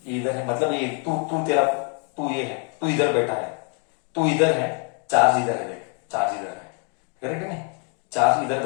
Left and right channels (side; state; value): right; quieter; 39.5 dB